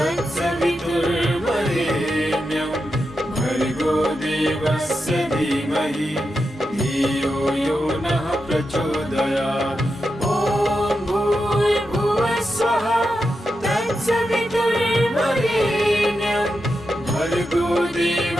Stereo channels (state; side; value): normal; both; correlation 0.88